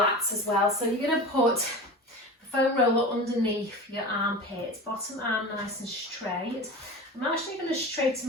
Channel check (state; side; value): normal; both; correlation 0.31